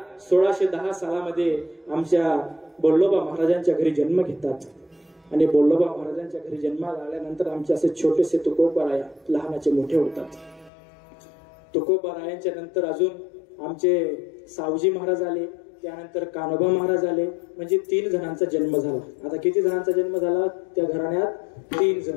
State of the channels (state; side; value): drops out; right; at 10.7 s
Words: 1610 सालामध्ये आमच्या बोल्लोबा महाराजांच्या घरी जन्म घेतात. आणि बोल्लोबा महाराजांच्या घरी जन्माला आल्यानंतर आमचे असे छोटेसे तुकोबाराया लहानाचे मोठे होतात. तुकोबारायांच्या नंतर अजून आमचे सावजी महाराज आले, त्यानंतर कान्होबा महाराज आले. म्हणजे 3 जणांचा जन्म झाला. आता किती जणांचा जन्म झाला त्या घराण्यात? 3 जण,